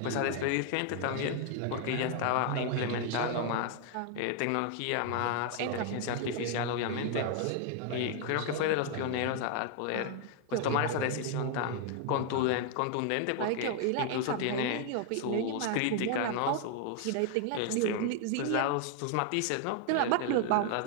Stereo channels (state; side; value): different; both; correlation 0.00